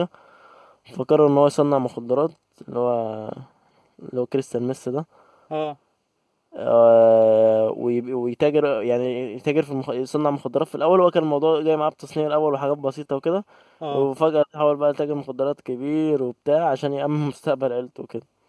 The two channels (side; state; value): both; identical; correlation 1.00